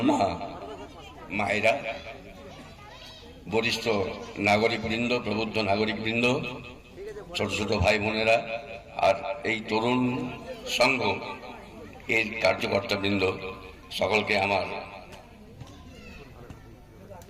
মায়েরা, বরিষ্ঠ নাগরিকবৃন্দ, প্রবুদ্ধ নাগরিকবৃন্দ, ছোট ছোট ভাই বোনেরা, আর এই তরুণ সংঘ এর কার্যকর্তাবৃন্দ, সকলকে আমার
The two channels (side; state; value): both; identical; correlation 1.00